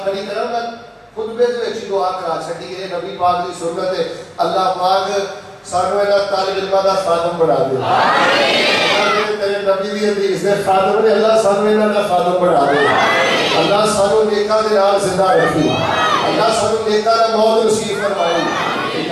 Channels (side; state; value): both; identical; correlation 1.00